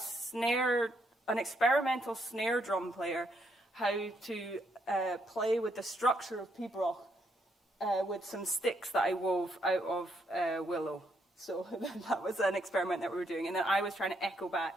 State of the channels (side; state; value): both; normal; correlation 0.75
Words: experimental snare drum player how to play with the structure of pre-baroque with some sticks that I wove out of willow. So that was an experiment that we were doing, and then I was trying to echo